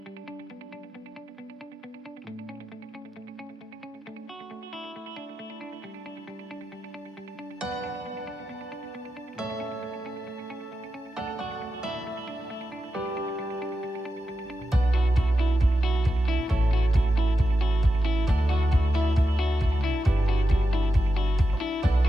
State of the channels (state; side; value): normal; both; correlation 0.89